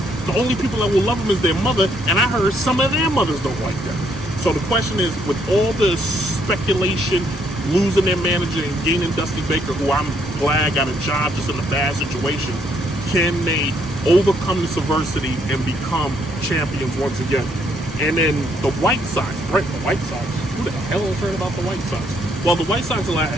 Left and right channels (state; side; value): normal; both; correlation 0.70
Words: The only people that will love them is their mother, and I heard some of their mothers don't like them. So the question is, with all the speculation, losing their manager and gaining Dusty Baker, who I'm glad got a job just in a bad situation, can they overcome this adversity and become champions once again? And then the White Sox, right? The White Sox. Who the hell has heard about the White Sox? Well, the White Sox